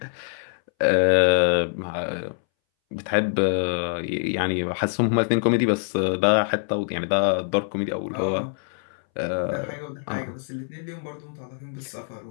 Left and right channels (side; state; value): right; silent; 61 dB below the other